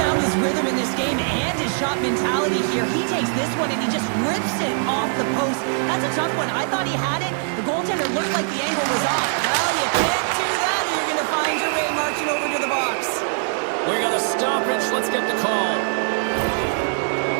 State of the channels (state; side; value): silent; left; 58 dB below the other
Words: his rhythm in this game and his shot mentality here. He takes this one and he just rips it off the post. That's a tough one. I thought he had it. The goaltender looked like the angle was off. Well, you can't do that, or you're going to find your way marching over to the box. We got a stoppage. Let's get the call.